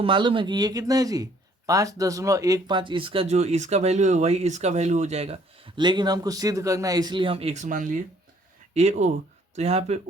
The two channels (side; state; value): both; normal; correlation 0.61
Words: मालूम है कि ये कितना है जी? 5.15। इसका जो इसका वैल्यू है वही इसका वैल्यू हो जाएगा, लेकिन हमको सिद्ध करना है इसलिए हम एक्स मान लिए। ए ओ, तो यहाँ पे